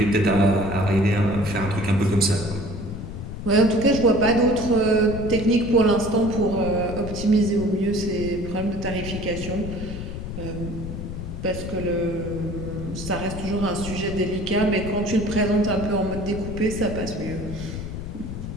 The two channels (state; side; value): noise; left; rumble, 7 dB below the sound